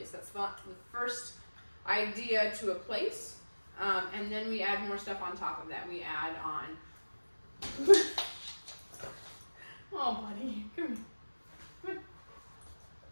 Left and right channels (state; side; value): inverted; both; correlation -1.00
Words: That's the first idea to a place. And then we add more stuff on top of that. We add on... Oh, buddy, come here.